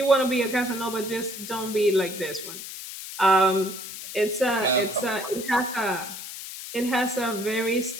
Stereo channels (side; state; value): left; noise; hiss, 10 dB below the sound